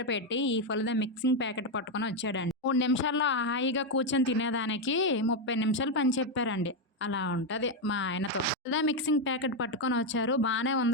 పెట్టి ఈ ఫలుదా మిక్సింగ్ ప్యాకెట్ పట్టుకొని వచ్చాడండి. 3 నిమిషాల్లో హాయిగా కూర్చొని తినేదానికి 30 నిమిషాలు పని చెప్పారండి. అలా ఉంటది మా ఆయనతో. ఫలదా మిక్సింగ్ ప్యాకెట్ పట్టుకొని వచ్చారు. బానే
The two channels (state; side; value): normal; both; correlation 0.04